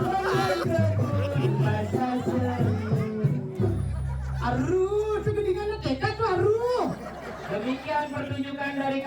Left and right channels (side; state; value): both; identical; correlation 1.00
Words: kebun masa semu. Aduh, segedingan tekad tuh aduh. Demikian pertunjukan dari